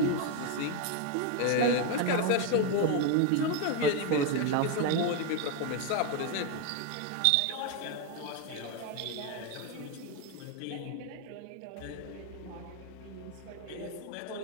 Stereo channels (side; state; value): both; different; correlation 0.01